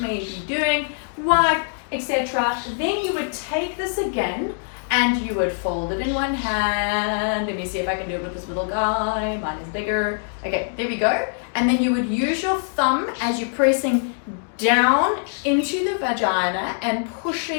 may be doing, wipe, etc. Then you would take this again and you would fold it in one hand. Let me see if I can do it with this little guy. Mine is bigger. Okay, there we go. And then you would use your thumb as you're pressing down into the vagina and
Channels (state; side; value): silent; right; digital silence